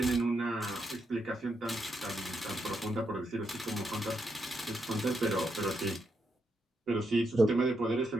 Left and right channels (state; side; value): normal; both; correlation 0.81